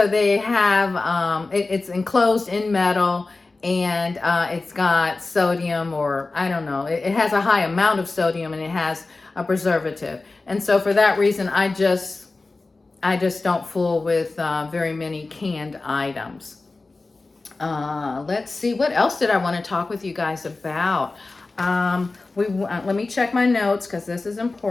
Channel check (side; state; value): right; quieter; 3.5 dB